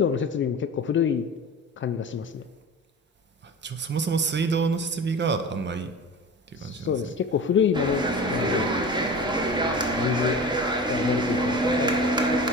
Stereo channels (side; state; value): both; normal; correlation 0.34